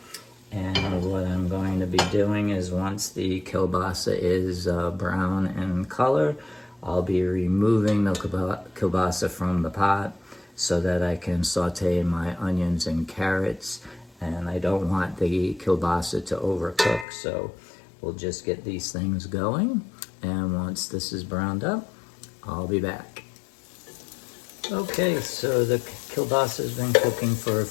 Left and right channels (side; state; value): right; drops out; at 17.1 s